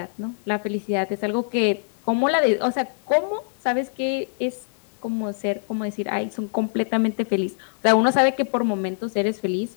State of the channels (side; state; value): right; silent; digital silence